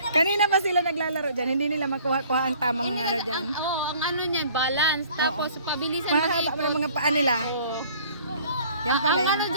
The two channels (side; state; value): both; inverted; correlation -0.53